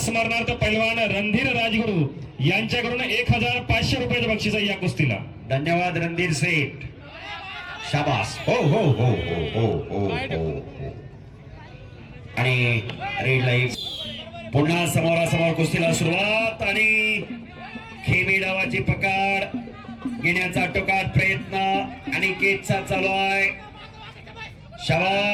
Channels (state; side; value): identical; both; correlation 1.00